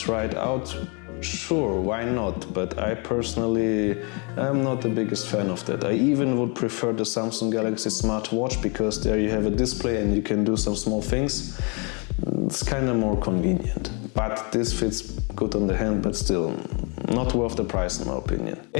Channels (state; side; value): quieter; right; 33.7 dB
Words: it out, sure, why not? But I personally am not the biggest fan of that. I even would prefer the Samsung Galaxy smartwatch, because there you have a display and you can do some small things. It's kind of more convenient. But this fits good on the hand, but still not worth the price in my opinion.